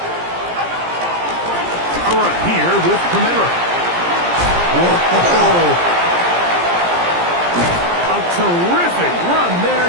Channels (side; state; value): left; late; 17 ms